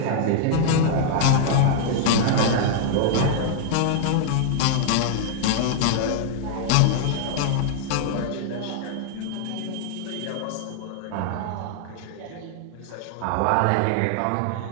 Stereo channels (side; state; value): both; different; correlation -0.01